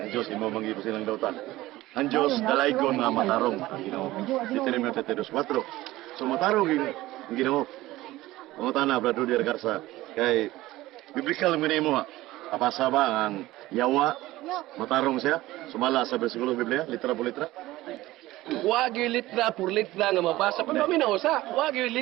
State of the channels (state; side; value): quieter; left; 17.4 dB